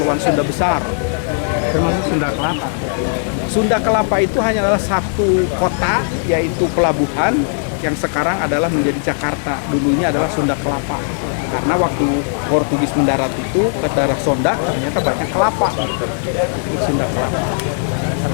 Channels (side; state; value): right; silent; 67 dB below the other